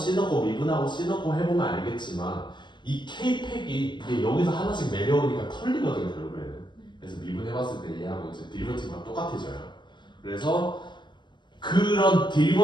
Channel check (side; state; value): right; late; 0.22 ms